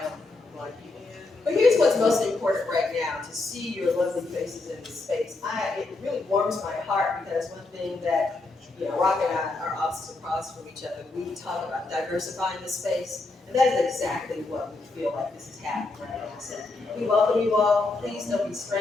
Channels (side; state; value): right; quieter; 3.3 dB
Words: blonde people. But here's what's most important right now, to see your lovely faces in this space. It really warms my heart because one thing that, Rock and I are opposites across from each other. We talk about diversifying the space, and that is exactly what we feel like this is happening right now. So we welcome you all. Please don't be